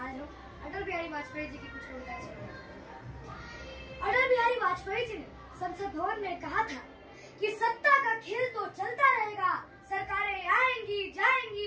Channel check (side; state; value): both; identical; correlation 1.00